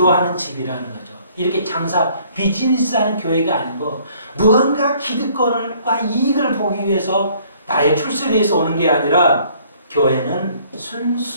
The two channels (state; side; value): inverted; both; correlation -0.60